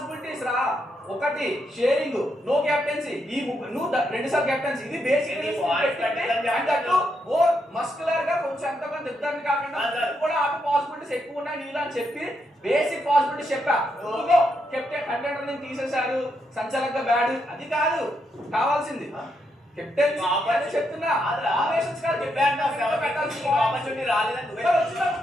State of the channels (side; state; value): both; normal; correlation 0.80